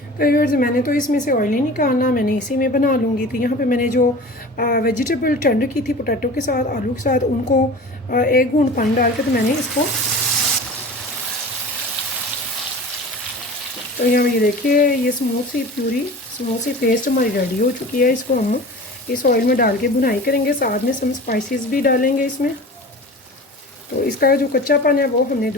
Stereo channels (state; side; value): normal; both; correlation 0.37